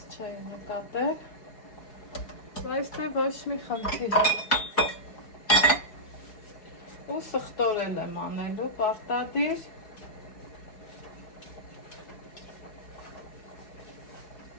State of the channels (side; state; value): right; late; 4.8 ms